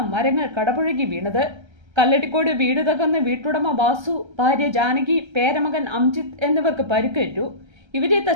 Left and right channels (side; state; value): left; late; 1.3 ms